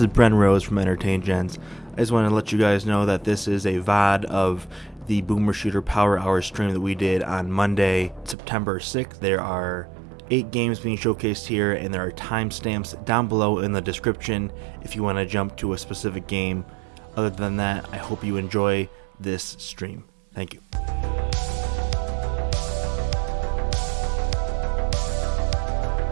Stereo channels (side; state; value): left; drops out; at 8.3 s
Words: is Bren Rose from EntertainGents. I just want to let you guys know that this is a VOD of the Boomer Shooter Power Hour stream that we did on Monday, September 6th. There are 8 games being showcased here, and there are timestamps down below in the description if you want to jump to a specific game. Other than that, I hope you enjoy this stream. Thank you.